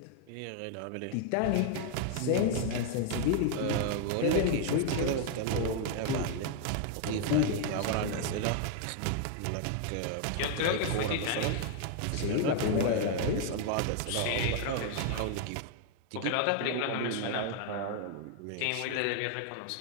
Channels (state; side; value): different; both; correlation 0.00